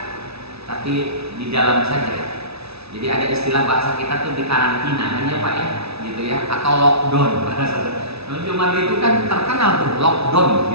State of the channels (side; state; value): left; late; 0.79 ms